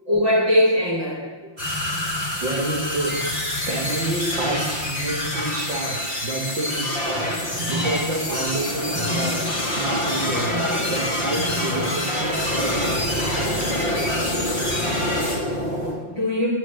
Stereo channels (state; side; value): late; left; 5.7 ms